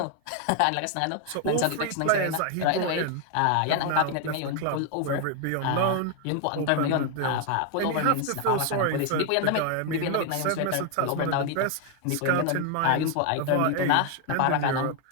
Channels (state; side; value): different; both; correlation 0.01